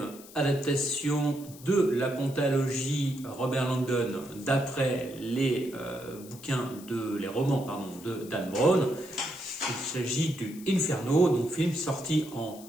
adaptation de la pentalogie Robert Langdon d'après les romans de Dan Brown. Il s'agit du Inferno, donc film sorti en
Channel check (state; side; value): noise; left; hiss, 19 dB below the sound